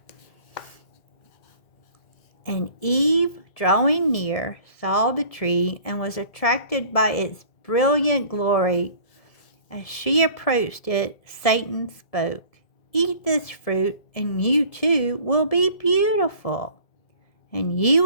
And Eve, drawing near, saw the tree and was attracted by its brilliant glory. As she approached it, Satan spoke, "Eat this fruit, and you too will be beautiful, and you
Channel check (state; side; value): late; right; 1.7 ms